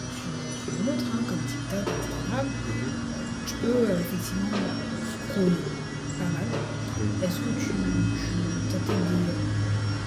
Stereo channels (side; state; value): both; identical; correlation 1.00